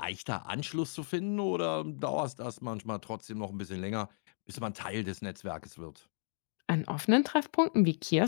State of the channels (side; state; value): right; silent; digital silence